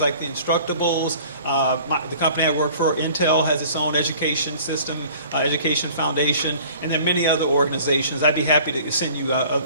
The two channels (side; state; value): both; inverted; correlation -0.49